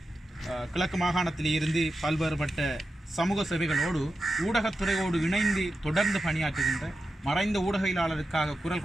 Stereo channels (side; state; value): both; normal; correlation 0.90